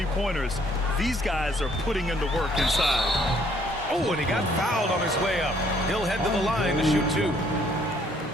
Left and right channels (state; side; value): normal; both; correlation 0.64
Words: These guys are putting in the work inside. Oh, and he got fouled on his way up. He'll head to the line to shoot 2.